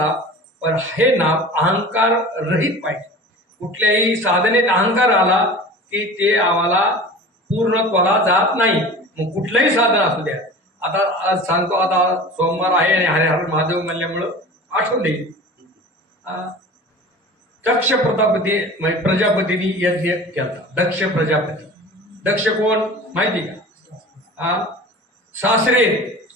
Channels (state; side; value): normal; both; correlation 0.38